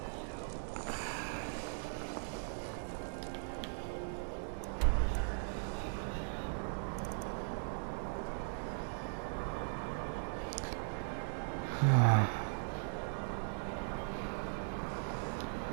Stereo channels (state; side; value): silent; left; digital silence